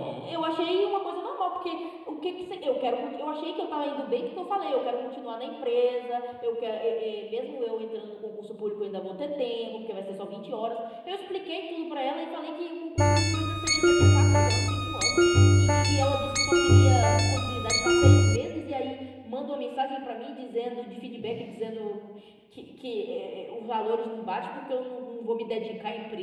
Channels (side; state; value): both; identical; correlation 1.00